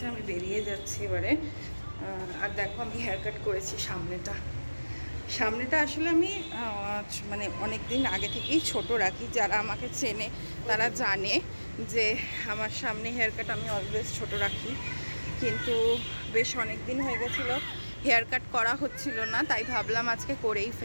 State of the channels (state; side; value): inverted; both; correlation -1.00